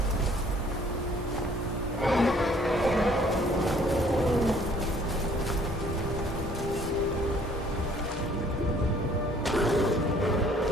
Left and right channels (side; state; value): both; normal; correlation 0.58